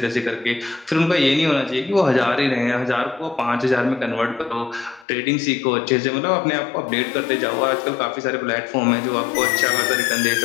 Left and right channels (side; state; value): right; drops out; at 5.1 s